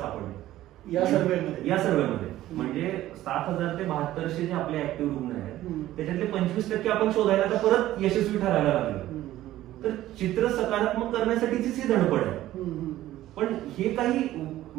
या सर्व्हेमध्ये. म्हणजे 7,000 ते 7200 जे आपले ऍक्टिव्ह रुग्ण आहेत त्याच्यातले 25% आपण शोधायला तर परत यशस्वी ठरायला लागलो. तर चित्र सकारात्मक करण्यासाठीचीच ही धडपड आहे. पण हे काही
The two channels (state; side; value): quieter; left; 14.5 dB